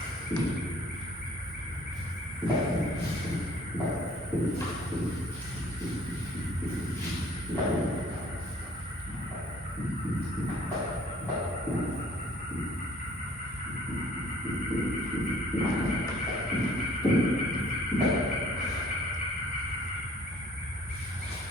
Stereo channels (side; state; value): both; normal; correlation 0.55